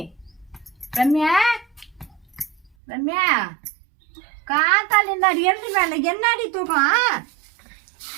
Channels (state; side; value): drops out; left; at 2.7 s